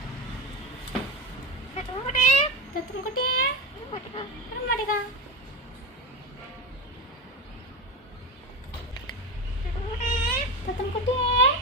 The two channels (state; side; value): normal; both; correlation 0.20